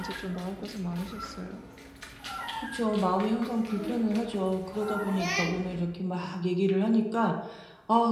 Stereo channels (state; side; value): identical; both; correlation 1.00